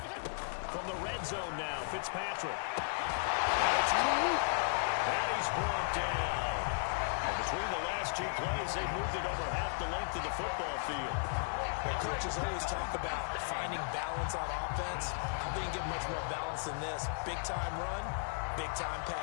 From the red zone now, Fitzpatrick. It's caught. And he's brought down. And between the last 2 plays, they moved it over half the length of the football field. Well, coaches always talk about finding balance on offense. I don't get much more balance than this. Big-time run, big-time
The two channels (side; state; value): right; silent; 54 dB below the other